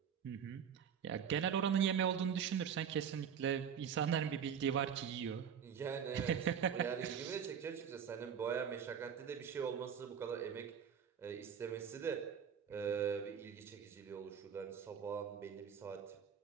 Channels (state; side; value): quieter; left; 7.8 dB